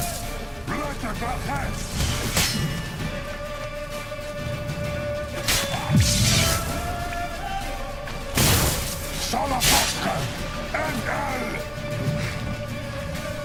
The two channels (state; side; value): identical; both; correlation 1.00